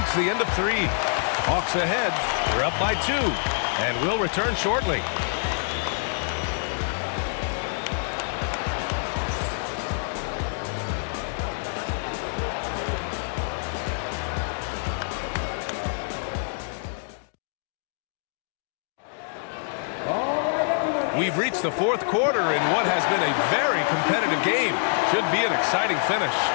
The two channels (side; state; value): right; silent; digital silence